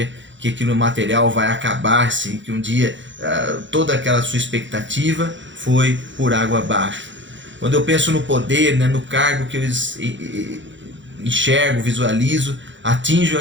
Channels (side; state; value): left; late; 0.54 ms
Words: que aquilo material vai acabar-se, que um dia toda aquela sua expectativa foi por água abaixo. Quando eu penso no poder, né, no cargo que eu enxergo, visualizo, atinjo